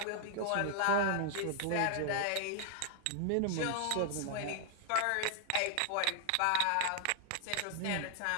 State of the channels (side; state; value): both; different; correlation -0.01